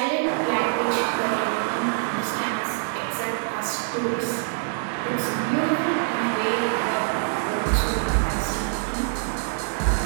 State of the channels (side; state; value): left; silent; digital silence